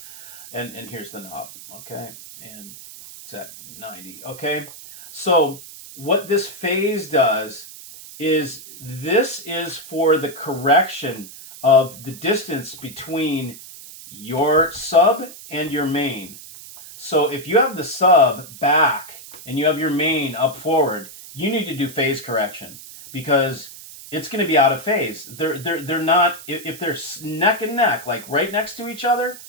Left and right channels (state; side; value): noise; right; hiss, 16 dB below the sound